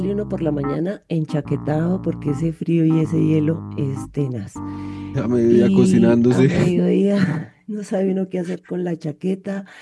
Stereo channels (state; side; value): identical; both; correlation 1.00